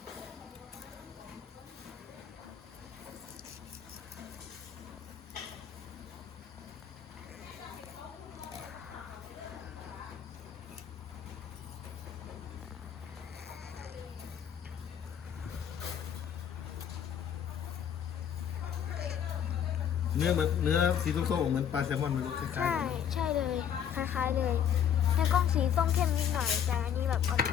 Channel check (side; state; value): right; quieter; 8.8 dB